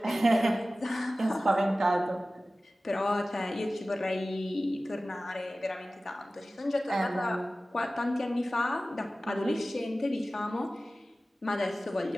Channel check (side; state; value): both; normal; correlation 0.96